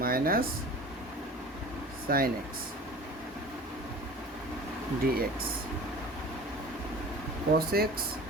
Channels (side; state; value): both; normal; correlation 0.40